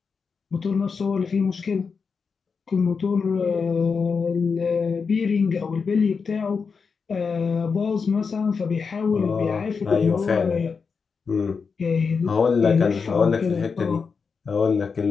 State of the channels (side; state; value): right; quieter; 5.4 dB